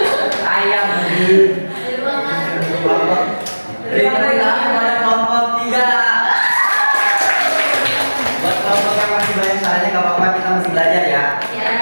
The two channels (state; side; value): inverted; both; correlation -1.00